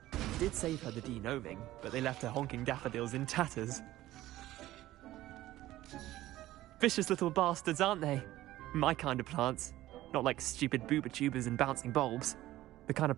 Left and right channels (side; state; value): left; quieter; 15.5 dB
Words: It did save her the de-gnoming, but they left her honking daffodils in tatters. Vicious little bastards, aren't they? My kind of plants. Not like stupid booba tubers and bouncing bulbs. The kind of